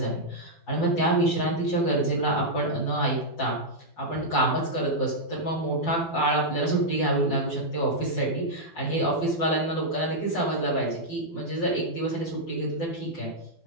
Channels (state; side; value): late; right; 12 ms